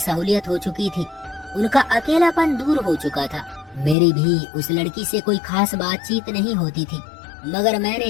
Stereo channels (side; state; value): right; drops out; at 4.0 s